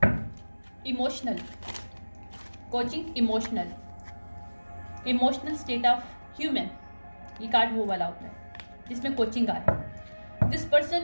emotional coaching, emotional state of human, ये कार्ड वो वाला होता है जिसमें कोचिंग आया। दिस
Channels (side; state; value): both; inverted; correlation -1.00